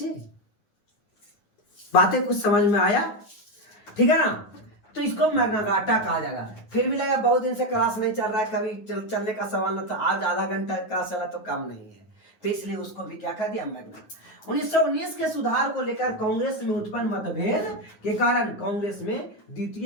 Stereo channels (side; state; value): right; late; 9.5 ms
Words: बातें कुछ समझ में आया? ठीक है ना? तो इसको मैग्ना कार्टा कहा जाएगा। फिर भी लगा बहुत दिन से क्लास नहीं चल रहा है, कभी चलने का सवाल न था, आज आधा घंटा क्लास चला तो कम नहीं है, तो इसलिए उसको भी क्या कर दिया? मैग्ना। 1919 के सुधार को लेकर कांग्रेस में उत्पन्न मतभेद के कारण कांग्रेस में